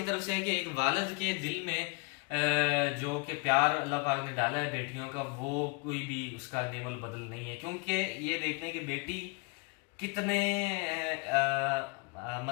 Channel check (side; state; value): right; quieter; 32.5 dB